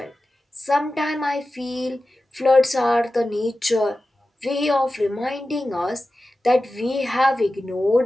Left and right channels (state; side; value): normal; both; correlation 0.94